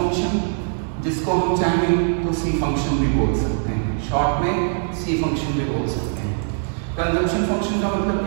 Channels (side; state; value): left; silent; digital silence